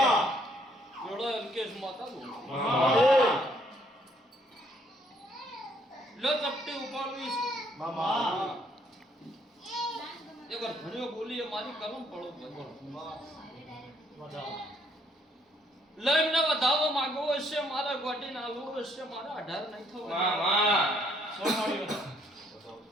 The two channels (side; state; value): both; normal; correlation 0.67